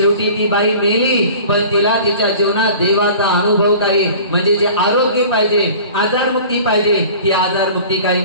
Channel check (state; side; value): inverted; both; correlation -0.43